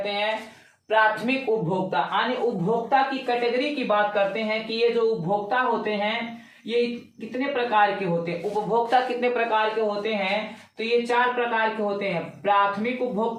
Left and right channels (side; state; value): both; identical; correlation 1.00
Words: हैं? प्राथमिक उपभोक्ता। यानी उपभोक्ता की कैटेगरी की बात करते हैं कि ये जो उपभोक्ता होते हैं ये कितने प्रकार के होते हैं। उपभोक्ता कितने प्रकार के होते हैं? तो ये 4 प्रकार के होते हैं। प्राथमिक